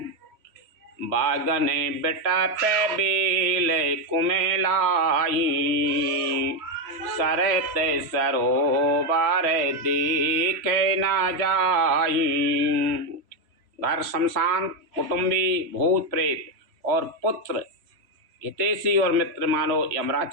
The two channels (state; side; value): late; left; 3.0 ms